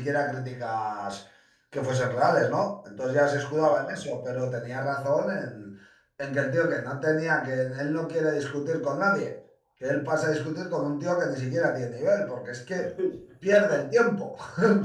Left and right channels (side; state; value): both; identical; correlation 1.00